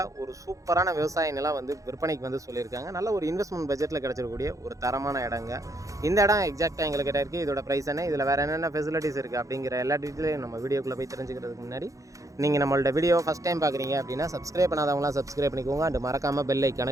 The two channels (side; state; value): left; late; 0.16 ms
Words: ஒரு சூப்பரான விவசாய நிலம் வந்து விற்பனைக்கு வந்து சொல்லியிருக்காங்க. நல்ல ஒரு இன்வெஸ்ட்மெண்ட் பட்ஜெட்டில் கிடச்சிருக்கக்கூடிய ஒரு தரமான இடங்க. இந்த இடம் எக்ஸாக்டாக எங்களுக்கு கிட்ட இருக்குது. இதோட ப்ரைஸ் என்ன, இதில் வேறு என்னென்ன ஃபெசிலிட்டிஸ் இருக்குது அப்படிங்கிற எல்லா டீட்டெயிலையும் நம்ம வீடியோக்குள்ளே போய் தெரிஞ்சுக்கிறதுக்கு முன்னாடி நீங்கள் நம்மளோட வீடியோ ஃபஸ்ட் டைம் பார்க்குறீங்க அப்படின்னா சப்ஸ்கிரைப் பண்ணாதவங்களாம் சப்ஸ்கிரைப் பண்ணிக்கோங்க. அண்ட் மறக்காமல் பெல் ஐக்கானை